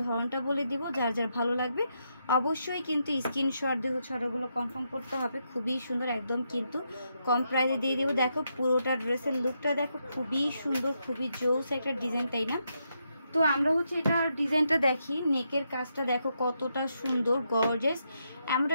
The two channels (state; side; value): inverted; both; correlation -0.81